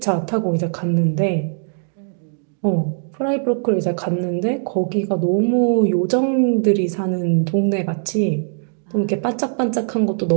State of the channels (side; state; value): left; silent; digital silence